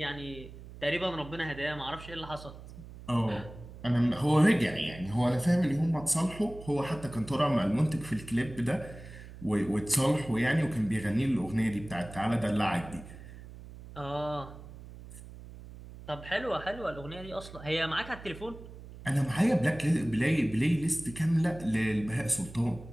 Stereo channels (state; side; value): noise; right; hum, 15 dB below the sound